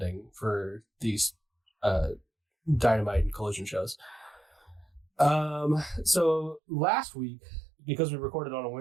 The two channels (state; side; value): drops out; left; at 6.6 s